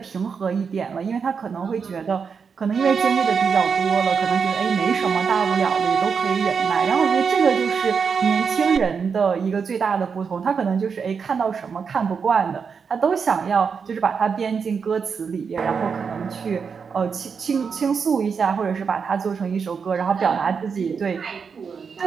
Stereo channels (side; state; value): left; quieter; 6.0 dB